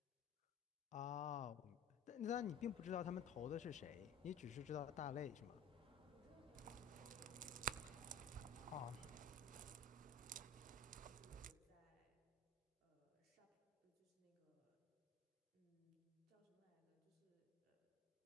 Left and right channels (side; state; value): right; quieter; 4.3 dB